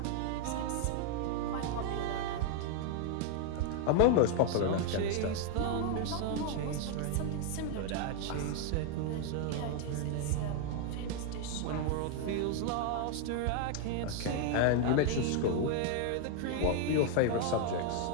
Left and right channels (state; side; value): different; both; correlation 0.01